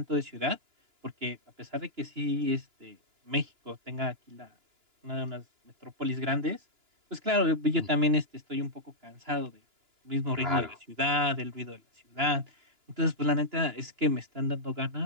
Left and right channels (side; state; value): left; late; 2.9 ms